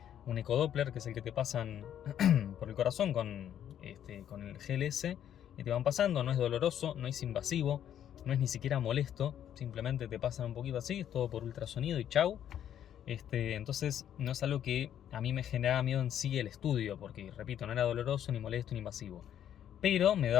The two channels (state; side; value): quieter; right; 10.2 dB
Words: un ecodoppler, que es el que te pasan por el corazón con el GLS, y te van pasando. No es doloroso, no es invasivo, no es ni siquiera molesto, simplemente te pasan un poquito así, es todo por ultrasonido y chau. Entonces no es algo que a mí me generaba miedo en sí el estudio, porque repito, no era doloroso, ni molesto, ni invasivo. Pero me